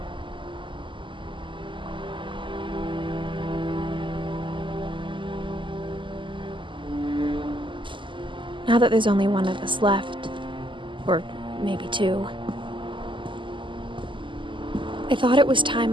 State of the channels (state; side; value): late; left; 0.24 ms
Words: Now that there's only one of us left, or maybe two, I thought it was time